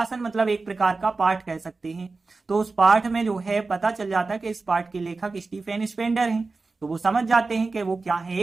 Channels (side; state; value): left; quieter; 3.8 dB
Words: मतलब एक प्रकार का पाठ कह सकते हैं। तो उस पाठ में जो है पता चल जाता है कि इस पाठ के लेखक स्टीफेन स्पेंडर हैं। तो वो समझ जाते हैं कि वो क्या है,